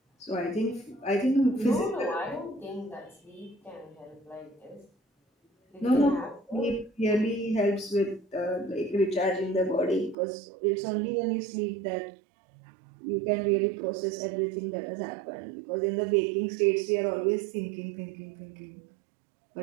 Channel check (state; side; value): drops out; left; at 10.2 s